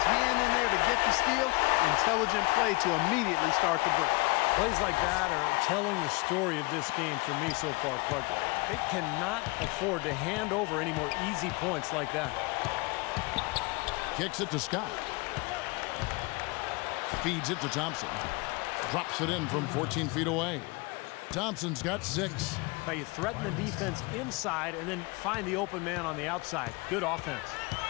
hand in there to get the steal. Intelligent play to immediately start the break. Plays like that are telling the story of this game for me so far, Clark. They cannot afford to hand over any more easy points like that. Kicks it to Scott. Feeds it to Thompson. Drops it in from 14 feet away. Thompson's got 6. Now you threaten the defense inside and then find the open man on the outside. Good offense.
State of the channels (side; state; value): right; quieter; 25.7 dB